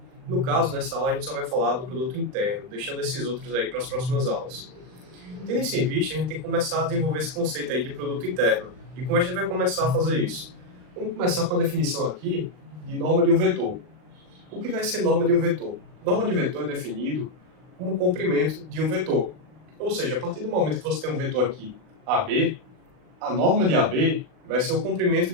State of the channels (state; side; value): late; left; 39 ms